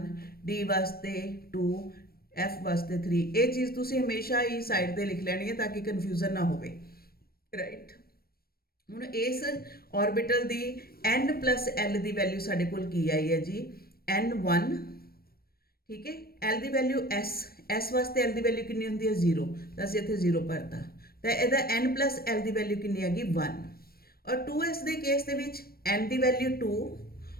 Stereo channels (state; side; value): late; right; 0.44 ms